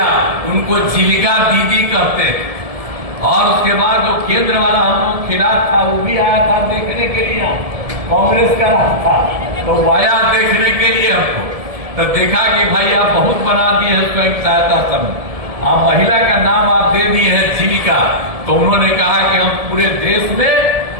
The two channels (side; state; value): left; late; 1.7 ms